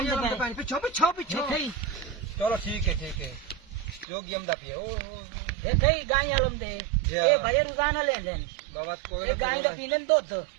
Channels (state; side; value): drops out; left; at 4.0 s